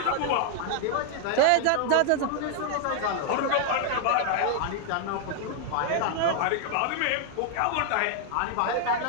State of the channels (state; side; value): different; both; correlation 0.00